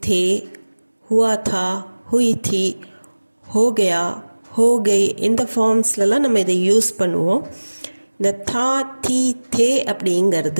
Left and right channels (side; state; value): both; inverted; correlation -1.00